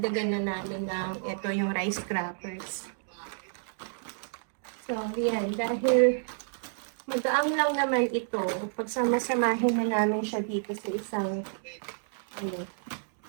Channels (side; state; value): left; silent; digital silence